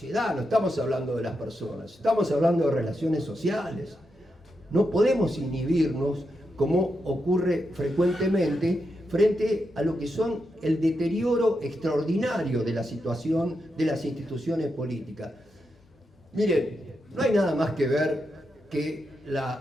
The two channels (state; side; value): normal; both; correlation 0.85